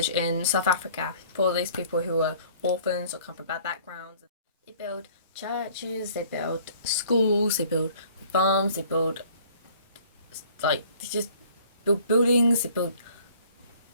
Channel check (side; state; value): both; inverted; correlation -0.54